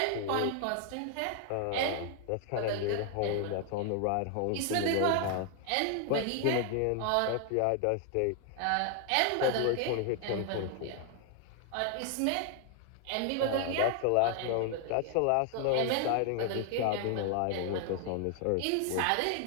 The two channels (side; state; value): both; different; correlation 0.00